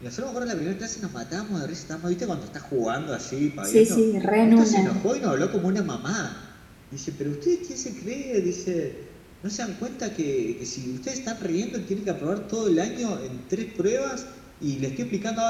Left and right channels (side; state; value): both; identical; correlation 1.00